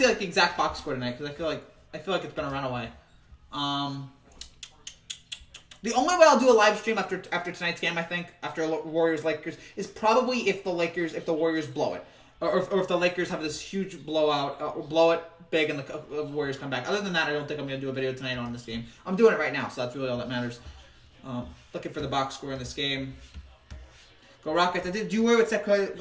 see the exact box score tonight because I feel like it's been a runaway. The only way I'll do a live stream after tonight's game, I think, after Warriors Lakers, is probably if the Warriors blow it, or if the Lakers have this huge blowout, or blow it big and the Warriors come back. Other than that, I don't think I'm going to do a video tonight on this game. I'm doing it right now, so that's really all that matters. Looking for the box score in this game. Go Rockets. Do you worry with the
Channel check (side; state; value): both; identical; correlation 1.00